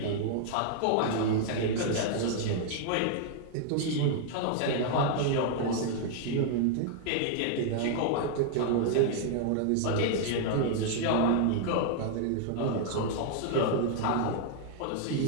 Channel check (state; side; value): different; both; correlation 0.00